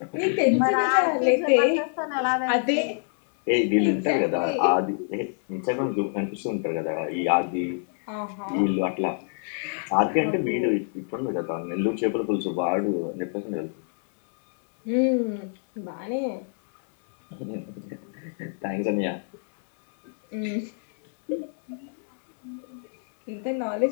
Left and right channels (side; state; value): right; silent; 61 dB below the other